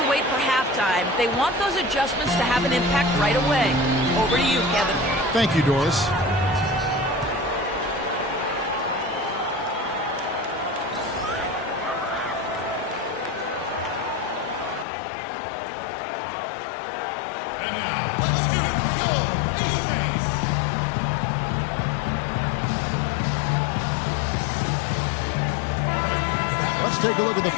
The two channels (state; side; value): drops out; right; at 14.9 s